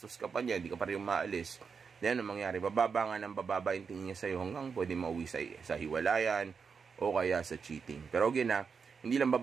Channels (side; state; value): left; quieter; 5.8 dB